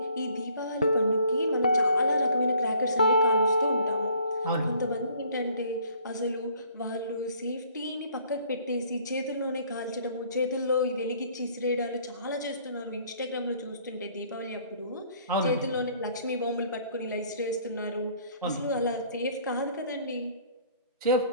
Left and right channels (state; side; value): inverted; both; correlation -0.59